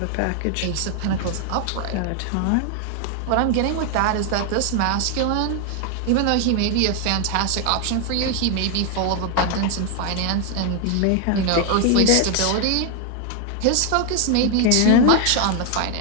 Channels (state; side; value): different; both; correlation 0.00